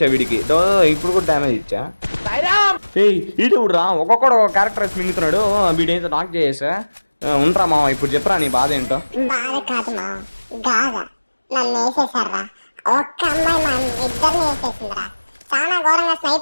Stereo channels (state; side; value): inverted; both; correlation -1.00